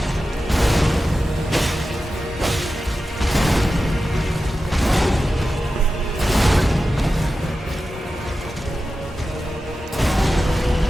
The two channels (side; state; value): both; normal; correlation 0.92